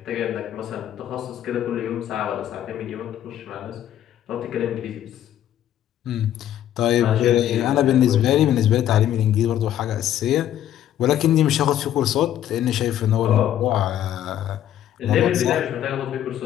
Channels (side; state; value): right; quieter; 11.4 dB